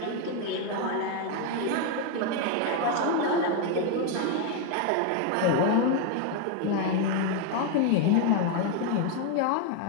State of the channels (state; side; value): different; both; correlation 0.01